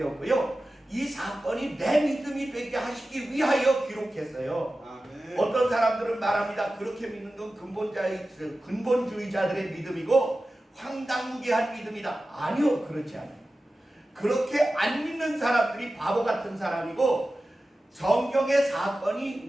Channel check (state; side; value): normal; both; correlation 0.95